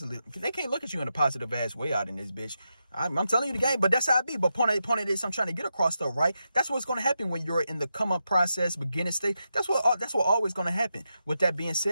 They can't look at you in a positive ass way out in this bitch. I'm telling you the game, but that's how it be. But point of this, I'm trying to get across though, right? That's what's going to happen when you're in the come up process, beginning stage. That's what always going to happen. With that being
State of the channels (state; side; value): inverted; both; correlation -0.87